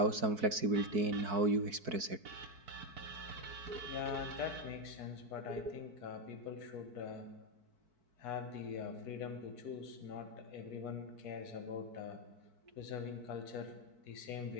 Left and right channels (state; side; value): late; left; 4.6 ms